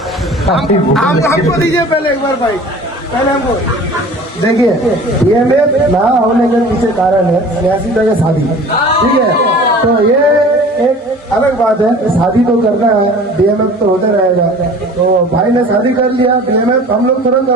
हमको दीजिए पहले एक बार भाई, पहले हमको देखिए। DMF ना होने के पीछे कारण है स्नेहाशीष भाई का शादी, ठीक है? तो ये एक अलग बात है, शादी तो करना है, DMF तो होते रहेगा। तो भाई ने शादी कर लिया, DMF हम लोग तुरंत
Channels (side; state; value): both; normal; correlation 0.44